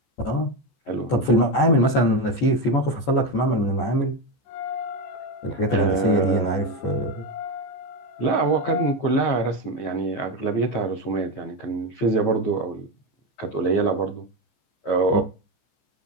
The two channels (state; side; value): late; right; 14 ms